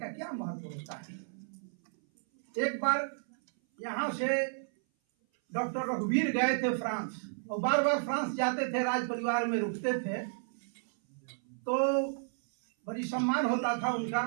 क्या महत्व होता है। एक बार यहाँ से डॉक्टर रघुवीर गए थे फ्रांस, और बार बार फ्रांस जाते थे, राज परिवार में रुकते थे, तो बड़ी सम्मान होता था उनका।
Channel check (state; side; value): silent; left; 56 dB below the other